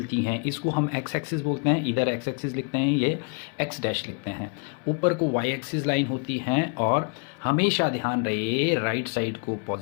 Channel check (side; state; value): right; quieter; 36.9 dB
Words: हैं इसको हम एक्स एक्सिस बोलते हैं। इधर एक्स एक्सिस लिखते हैं, ये एक्स डैश लिखते हैं। ऊपर को वाई एक्सिस लाइन होती हैं और हमेशा ध्यान रहे राइट साइड को